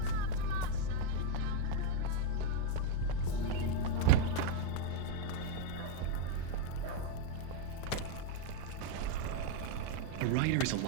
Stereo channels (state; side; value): different; both; correlation 0.00